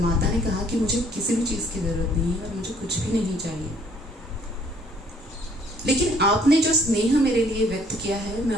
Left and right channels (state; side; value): normal; both; correlation 0.61